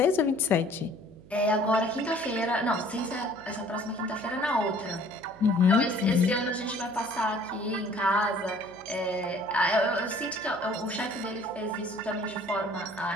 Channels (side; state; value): right; noise; hum, 23 dB below the sound